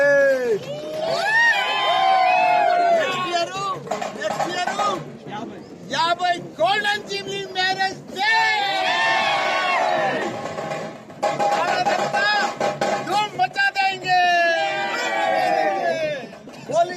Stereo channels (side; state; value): both; identical; correlation 1.00